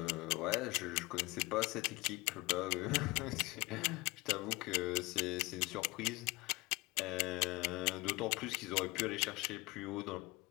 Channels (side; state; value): right; quieter; 23.2 dB